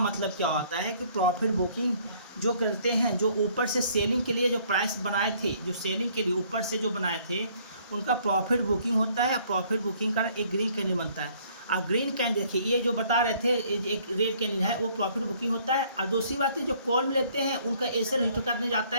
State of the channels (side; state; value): both; inverted; correlation -0.61